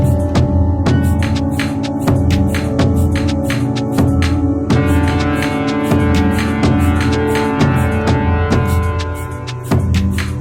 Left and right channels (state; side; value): identical; both; correlation 1.00